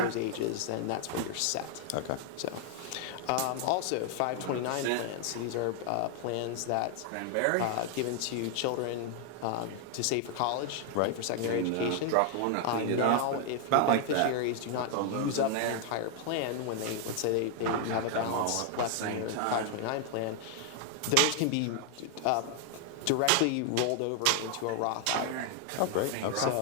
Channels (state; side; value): different; both; correlation 0.00